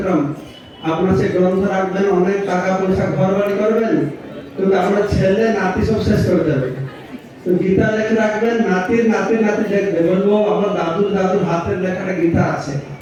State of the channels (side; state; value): both; identical; correlation 1.00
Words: আপনার সে গ্রন্থ রাখবেন, অনেক টাকা পয়সা ঘর বাড়ি করবেন, কিন্তু আপনার ছেলে নাতি সব শেষ করে দেবে। তো গীতা লেখে রাখবেন, নাতির নাতি লিখবে, বলবো আমার দাদুর হাতের লেখাটা গীতা আছে।